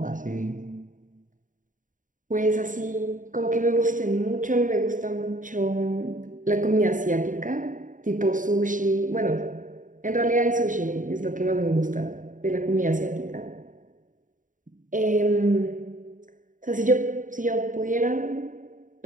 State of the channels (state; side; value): late; left; 0.38 ms